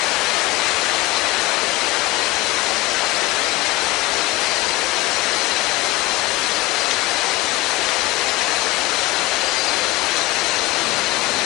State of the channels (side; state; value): right; quieter; 19.6 dB